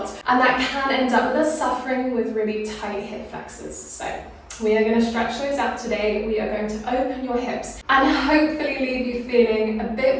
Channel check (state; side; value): identical; both; correlation 1.00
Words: and that can end up with us suffering with really tight hip flexors. So we are going to stretch those out today. We are going to open your hips and hopefully leave you feeling a bit